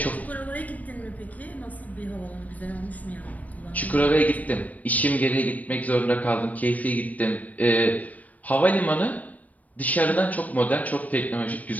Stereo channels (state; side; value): late; right; 0.073 ms